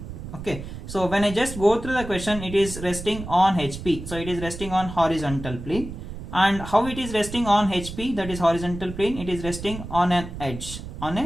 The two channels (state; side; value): noise; right; rumble, 10 dB below the sound